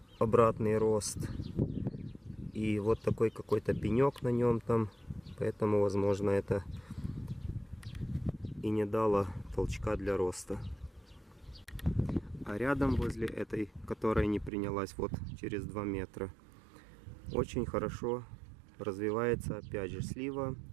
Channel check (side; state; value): left; drops out; at 14.5 s